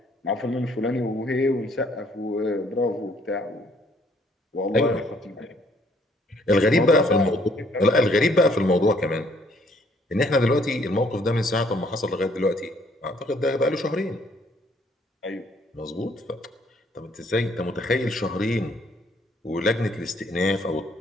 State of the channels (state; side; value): normal; both; correlation 0.65